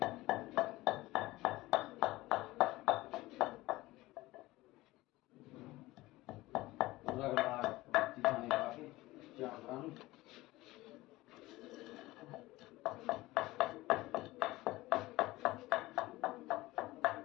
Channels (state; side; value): quieter; right; 18.9 dB